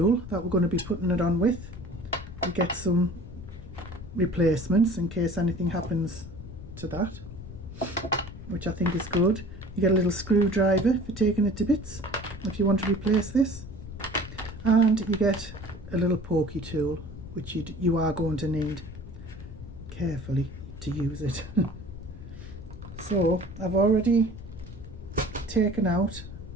that we're going to be putting it on with. You get some replacements in case anything happens to that, which I think is good. You get a little screwdriver for taking it to bits if you want to replace this, and you get a little pokey tool which you are going to need carefully to use it. So I've already taken out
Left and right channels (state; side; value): noise; left; rumble, 13 dB below the sound